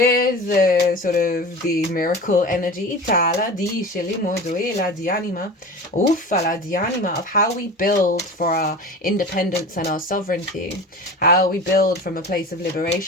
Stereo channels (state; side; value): normal; both; correlation 0.34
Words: the sort of the miracle energy of how we build for our independence and our sovereignty, how we build from a place of